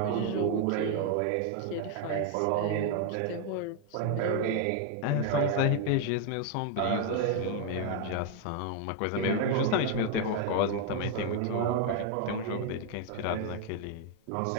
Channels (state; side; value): different; both; correlation 0.00